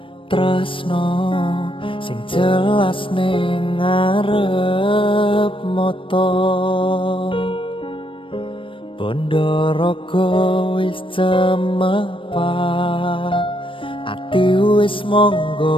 tresno sing jelas ning ngarep mata bondo raga wis cemepak ati wis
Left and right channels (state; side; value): late; right; 0.25 ms